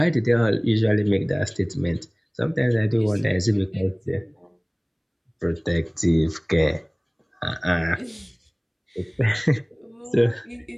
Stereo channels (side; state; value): both; identical; correlation 1.00